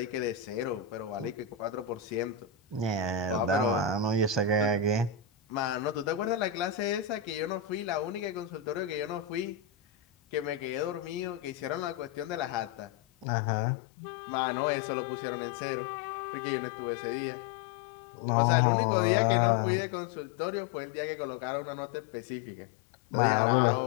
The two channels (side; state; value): right; drops out; at 13.2 s